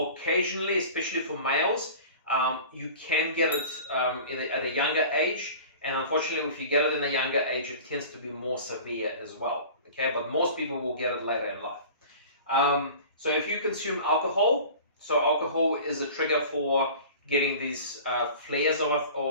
especially for males, you can get it at a younger age. And unfortunately, if you get it in a younger age, it tends to be more severe as well. Okay, but most people will get it later in life. So if you consume alcohol, so alcohol is a trigger for getting these flares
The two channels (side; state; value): both; inverted; correlation -0.40